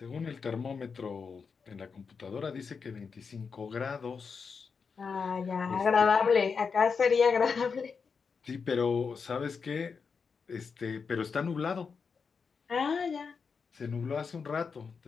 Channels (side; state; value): right; quieter; 5.5 dB